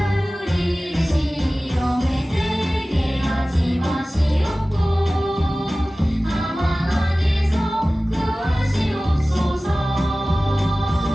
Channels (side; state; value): both; normal; correlation 0.97